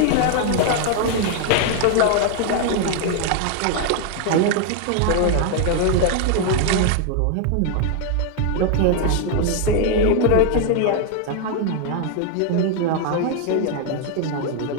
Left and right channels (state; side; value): different; both; correlation 0.00